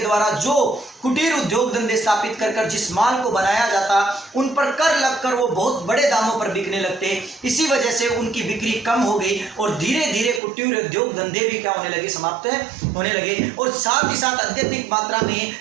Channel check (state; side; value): drops out; left; at 10.4 s